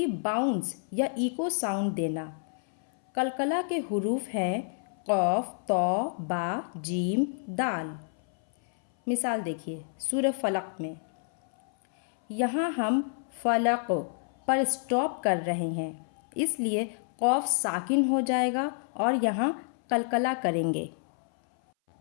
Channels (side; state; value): right; silent; 58 dB below the other